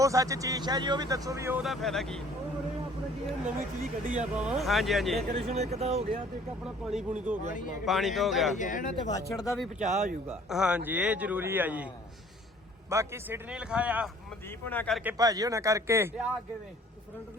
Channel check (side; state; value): both; normal; correlation 0.54